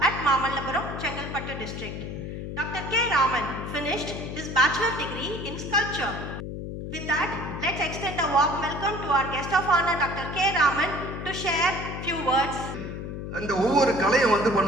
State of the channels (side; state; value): left; noise; hum, 7 dB below the sound